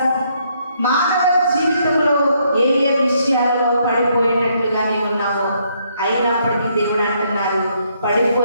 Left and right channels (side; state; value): both; inverted; correlation -0.72